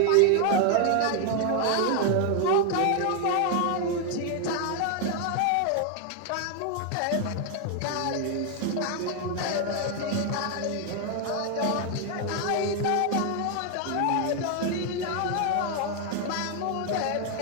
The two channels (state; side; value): different; both; correlation 0.01